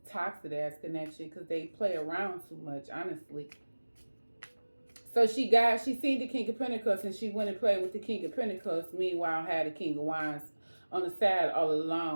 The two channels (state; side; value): inverted; both; correlation -1.00